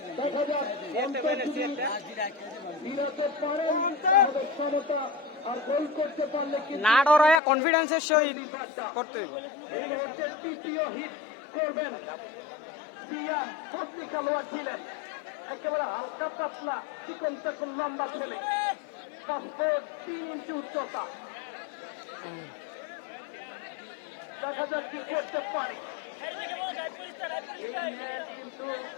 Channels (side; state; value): right; drops out; at 7.4 s